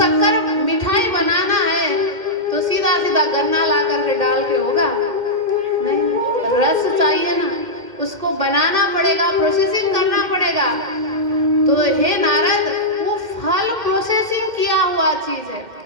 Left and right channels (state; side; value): late; left; 2.1 ms